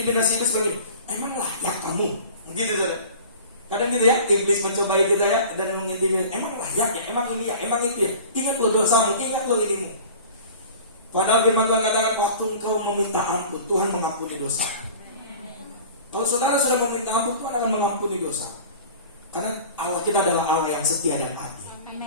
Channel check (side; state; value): both; inverted; correlation -0.41